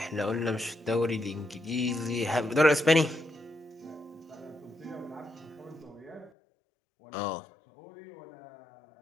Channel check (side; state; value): right; drops out; at 6.3 s